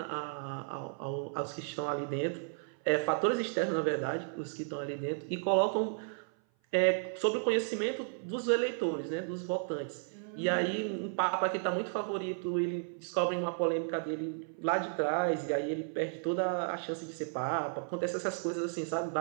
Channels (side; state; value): left; silent; 55 dB below the other